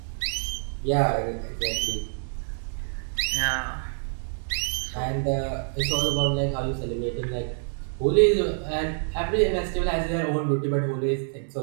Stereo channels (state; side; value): silent; left; digital silence